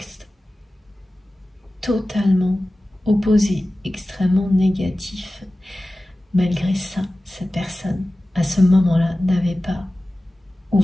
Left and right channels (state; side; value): normal; both; correlation 0.96